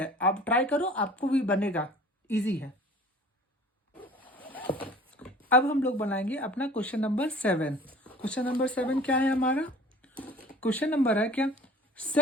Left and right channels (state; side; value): normal; both; correlation 0.46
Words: आप ट्राई करो, आपको भी बनेगा, इजी है। अब हम लोग बनाएंगे अपना क्वेश्चन नंबर 7। क्वेश्चन नंबर 7 क्या है हमारा? क्वेश्चन नंबर है क्या,